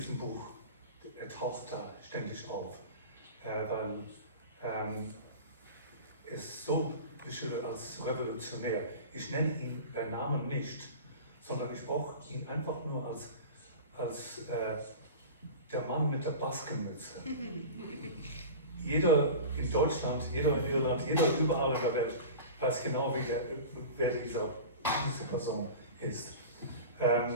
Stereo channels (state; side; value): inverted; both; correlation -0.33